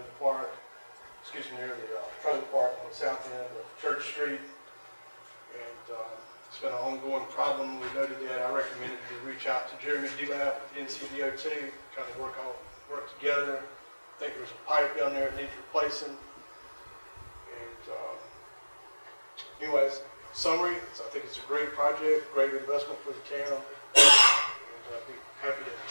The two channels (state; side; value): inverted; both; correlation -1.00